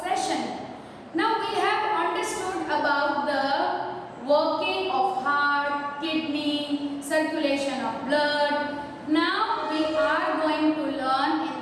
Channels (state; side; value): identical; both; correlation 1.00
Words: session. Now we have understood about the working of heart, kidney, circulation of blood. Now we are going to learn